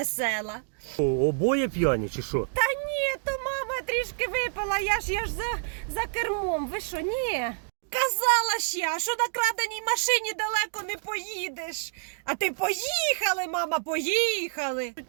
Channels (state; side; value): silent; left; digital silence